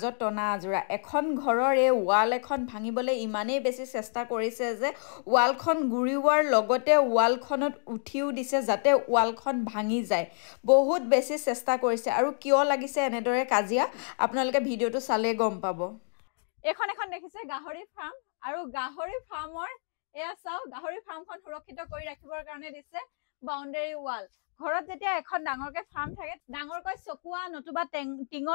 টনা আজোৰা এখন ঘৰৰ এই ৱাল এখন ভাঙিবলৈ ইমানেই বেছি চেষ্টা কৰিছে যে ৱালখন গুৰিওৱাৰ লগতে ৱালখনত উঠিও দিছে যাতে ৱালখন ভাঙি যায় বহুত বেছি চেষ্টা কৰিছে আৰু কিয় লাগিছে এনেদৰে কাজিয়া আপোনালোকে ভিডিঅটো চালে গম পাব এখন দেখিছে গাহৰি ফাৰ্ম আৰু গাহৰি ফাৰ্মৰ এয়া চাও গাহৰি ফাৰ্মখন সুৰক্ষিত কৰি ৰাখিবৰ কাৰণে দিছে বাউণ্ডাৰী ৱাল ঘৰত যেতিয়া এখন ডাঙৰকে ফাৰ্ম থাকে ডাঙৰকৈ চকুৱা নতুবা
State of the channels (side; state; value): right; silent; 59 dB below the other